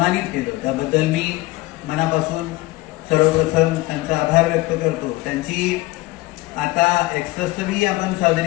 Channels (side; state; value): right; quieter; 20.0 dB